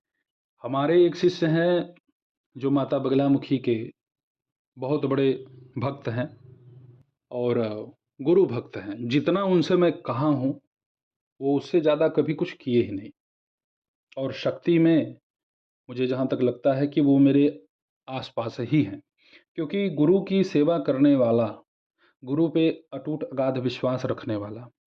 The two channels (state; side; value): identical; both; correlation 1.00